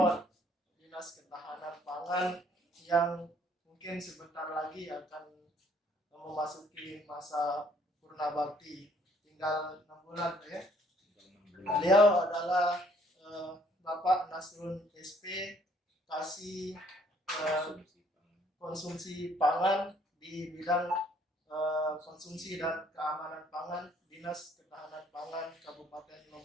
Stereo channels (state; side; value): normal; both; correlation 0.63